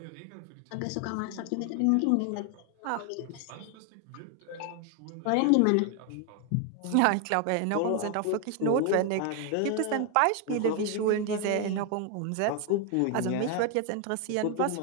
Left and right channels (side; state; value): both; different; correlation 0.01